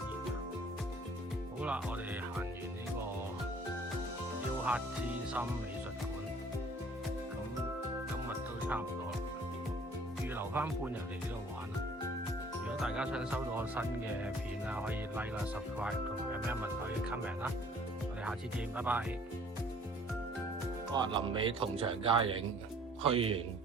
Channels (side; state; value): both; normal; correlation 0.55